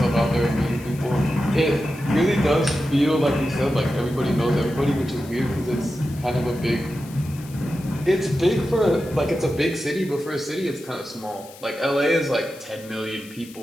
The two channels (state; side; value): noise; left; hiss, 20 dB below the sound